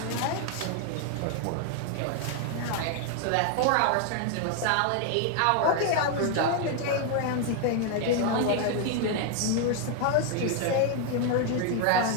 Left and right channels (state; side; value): different; both; correlation 0.00